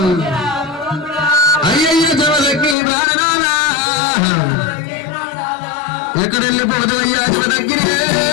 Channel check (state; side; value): drops out; right; at 2.8 s